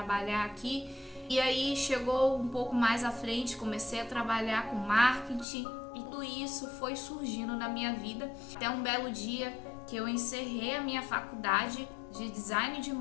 aqui. E aí chegou um pouco mais à frente, comecei a trabalhar com marketing. E tudo isso foi surgindo na minha vida. Até um belo dia que eu encerrei a minha faculdade de design de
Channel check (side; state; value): right; drops out; at 5.5 s